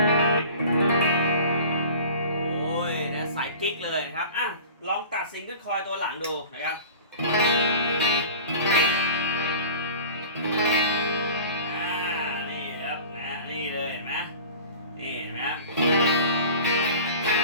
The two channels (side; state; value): both; inverted; correlation -0.40